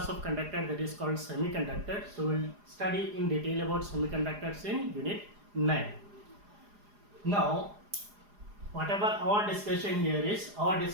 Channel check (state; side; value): late; left; 4.9 ms